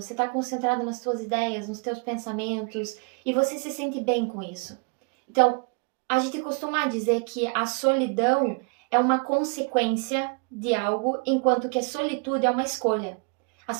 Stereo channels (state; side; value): quieter; left; 34.9 dB